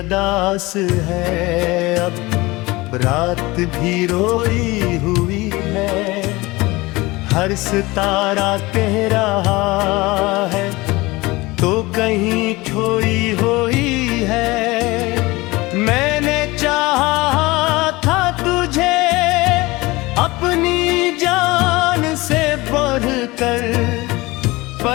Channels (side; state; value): right; quieter; 21.6 dB